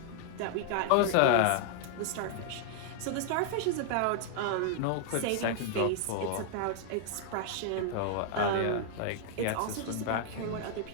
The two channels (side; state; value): both; different; correlation 0.00